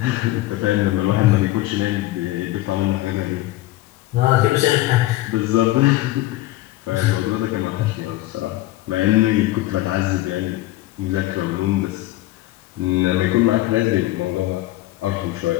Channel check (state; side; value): quieter; right; 16.8 dB